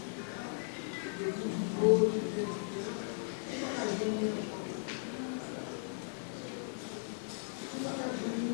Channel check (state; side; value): silent; right; 53 dB below the other